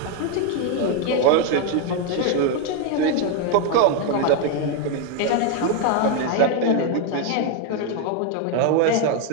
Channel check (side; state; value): both; different; correlation 0.01